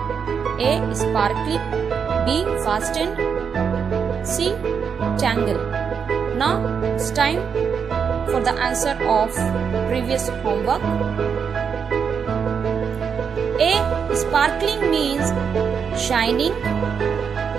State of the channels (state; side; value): quieter; left; 6.6 dB